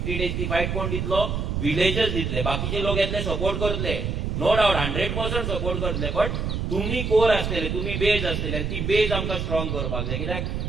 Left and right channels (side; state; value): right; noise; rumble, 2 dB below the sound